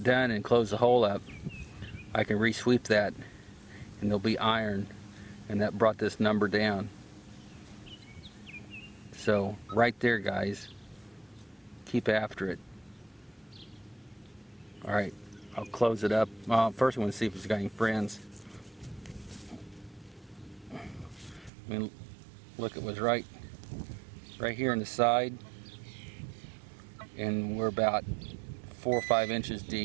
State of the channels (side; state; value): left; drops out; at 21.5 s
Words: done and close the hole up, I can re-sweep that and there'll be iron, and that brought this number down. So right there, guys, keep after it. Alright, I'll close it up. First I want to see if it's got any friends. I mean, look, it was right here on the side, and we're about 4 or 5 inches